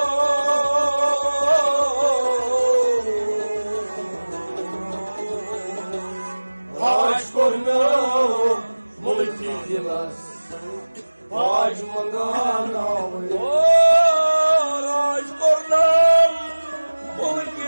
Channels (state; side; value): inverted; both; correlation -1.00